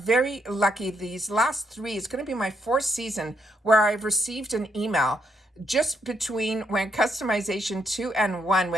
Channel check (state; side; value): normal; both; correlation 0.76